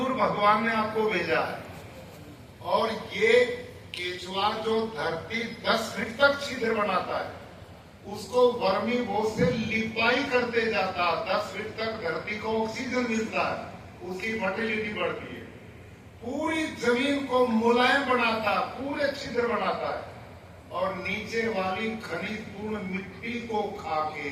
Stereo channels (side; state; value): both; identical; correlation 1.00